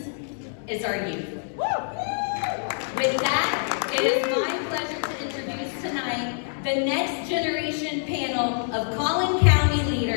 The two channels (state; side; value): silent; right; digital silence